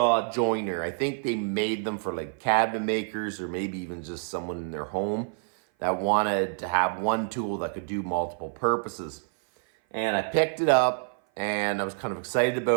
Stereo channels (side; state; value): left; silent; 56 dB below the other